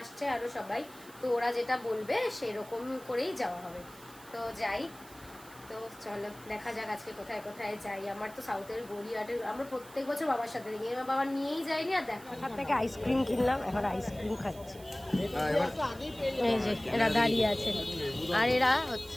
আরও সবাই, তো ওরা যেটা বলবে সেরকম করেই যাওয়া হবে। তো যাই, তো চলো দেখা যাক আজকে কোথায় কোথায় যাই। আমার তো সাউথের গড়িয়াহাটের আমরা প্রত্যেক বছর বাবার সাথে দেখি, আমার বাবা নিয়েই যায়নি। আর দেখো ওখান থেকে আইসক্রিম কিনলাম, এখন আইসক্রিম খাচ্ছি। এই যে এরা দাঁড়িয়ে আছে, আর এরা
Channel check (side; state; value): right; noise; hiss, 21 dB below the sound